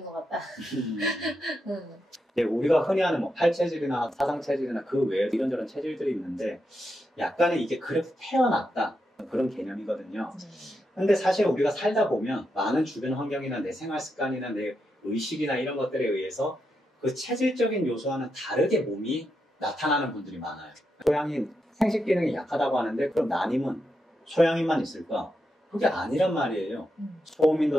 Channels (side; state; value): both; normal; correlation 0.85